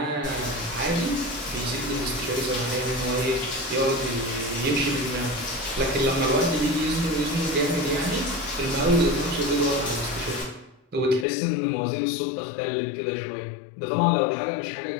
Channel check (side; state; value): right; drops out; at 11.2 s